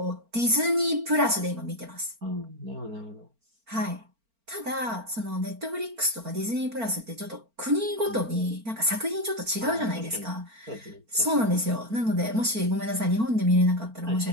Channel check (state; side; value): late; left; 4.4 ms